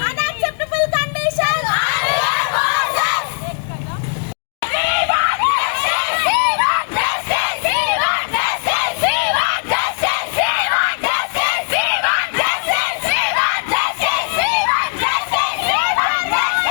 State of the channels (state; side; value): silent; right; digital silence